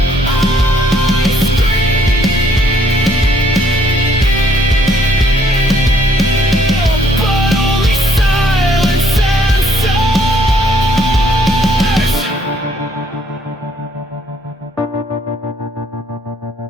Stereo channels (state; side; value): normal; both; correlation 0.65